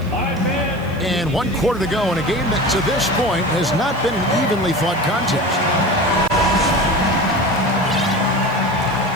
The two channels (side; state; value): right; noise; hiss, 25 dB below the sound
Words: And 1 quarter to go in a game that to this point has not been an evenly fought contest.